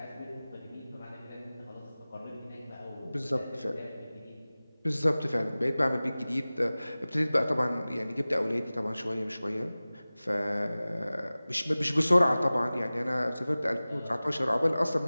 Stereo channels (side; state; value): both; inverted; correlation -0.98